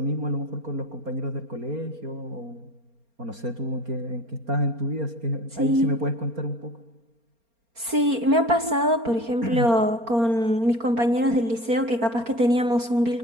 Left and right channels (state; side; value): late; left; 4.3 ms